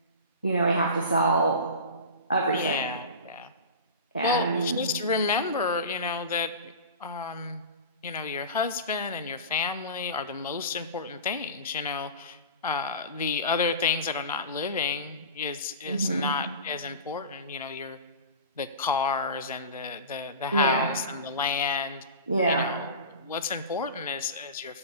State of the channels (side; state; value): both; inverted; correlation -0.31